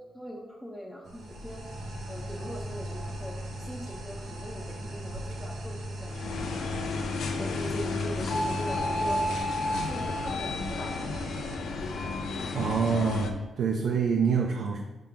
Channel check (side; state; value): both; normal; correlation 0.72